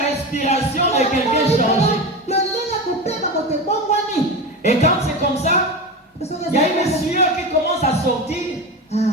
respiration de quelqu'un changer. Et quand c'est comme ça, il y a une sueur qui commence à sortir.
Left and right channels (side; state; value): both; normal; correlation 0.23